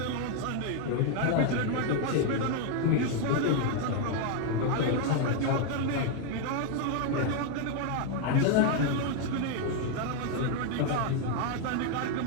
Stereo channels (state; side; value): different; both; correlation 0.01